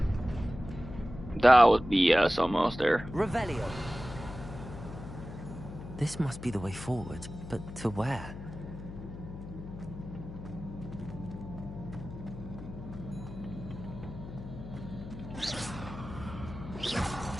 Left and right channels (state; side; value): noise; left; hum, 11 dB below the sound